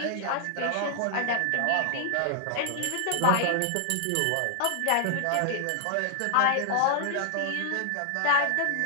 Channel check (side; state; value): both; different; correlation -0.01